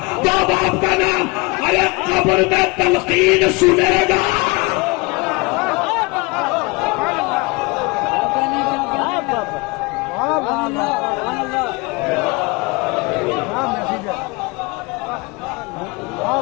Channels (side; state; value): right; quieter; 26.2 dB